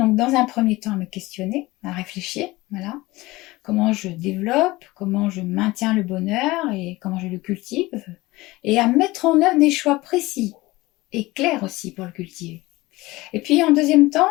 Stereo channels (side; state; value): right; quieter; 20.1 dB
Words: dans un premier temps, à me questionner, à réfléchir, voilà. Comment je développe, comment je maintiens le bonheur et comment je le cultive. Et à mettre en œuvre des choix précis et clairs aussi pour le cultiver. Et puis en deuxième temps,